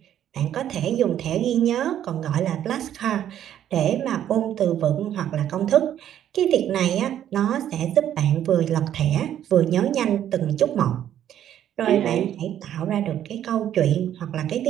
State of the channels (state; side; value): quieter; left; 10.8 dB